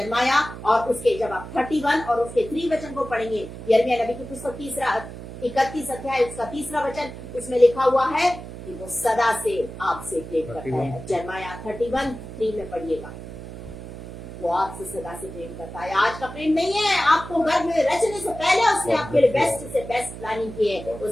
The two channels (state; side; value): noise; right; hum, 12 dB below the sound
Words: और उसके, जब आप 31 और उसके 3 वचन को पढ़ेंगे, यिर्मयाह नबी की पुस्तक 31 अध्याय उसका 3 वचन, उसमें लिखा हुआ है कि वो सदा से आपसे प्रेम करता है। जर्माया 31:3 में पढ़िएगा, वो आपसे सदा से प्रेम करता है। आज का प्रेम नहीं है, आपको घर में रचने से पहले उसने आपके लिए बेस्ट से बेस्ट प्लानिंग की है।